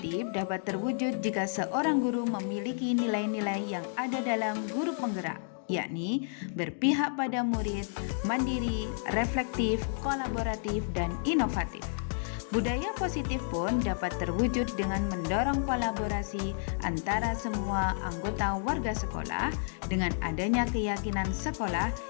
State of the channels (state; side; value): silent; right; digital silence